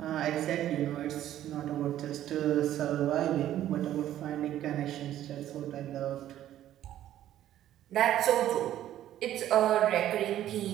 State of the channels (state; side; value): quieter; left; 12.3 dB